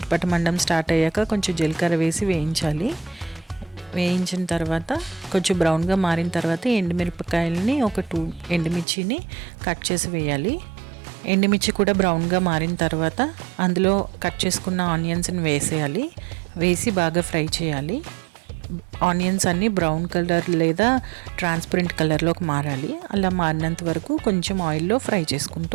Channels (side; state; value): left; drops out; at 8.8 s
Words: స్టార్ట్ అయ్యాక కొంచెం జీలకర్ర వేసి వేయించాలి. వేయించిన తర్వాత కొంచెం బ్రౌన్గా మారిన తర్వాత ఎండుమిరపకాయలని ఒక 2 ఎండుమిర్చిని కట్ చేసి వేయాలి. ఎండుమిర్చి కూడా బ్రౌన్గా మారిన తర్వాత అందులో కట్ చేసుకున్న ఆనియన్స్ని వేసేయాలి. వేసి బాగా ఫ్రై చేయాలి. ఆనియన్స్ అన్నీ బ్రౌన్ కలర్ లేదా ట్రాన్స్పరెంట్ కలర్లోకి మారాలి. అలా మారినంత వరకు కొంచెం ఆయిల్లో ఫ్రై